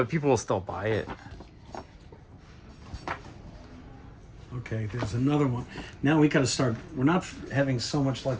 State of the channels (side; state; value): both; identical; correlation 1.00